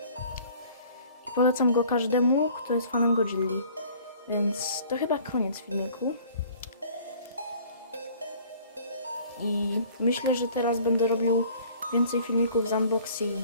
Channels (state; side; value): inverted; both; correlation -0.51